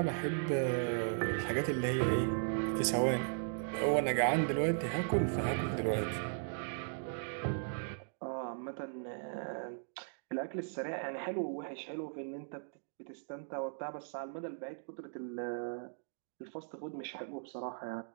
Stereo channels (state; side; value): silent; left; digital silence